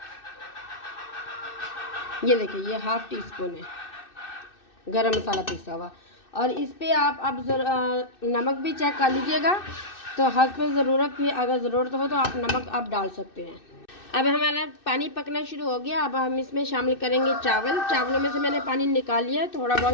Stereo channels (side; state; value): right; late; 2.6 ms